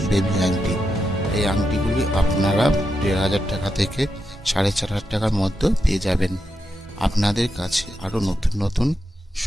বেবি আংটি। এই আংটিগুলি আপনারা 1,500 টাকা থেকে 4,500 টাকার মধ্যে পেয়ে যাবেন। আপনাদের কাছে আরও নতুন নতুন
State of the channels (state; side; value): normal; both; correlation 0.86